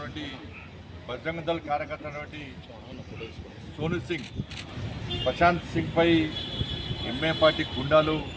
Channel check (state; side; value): identical; both; correlation 1.00